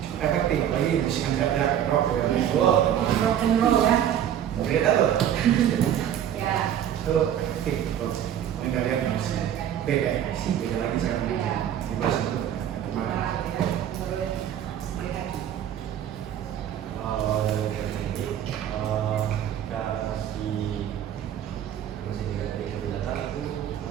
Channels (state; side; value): quieter; left; 10.2 dB